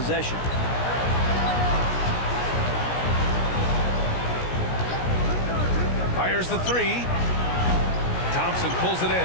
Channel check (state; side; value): late; right; 17 ms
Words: Fires the three. Thompson pulls it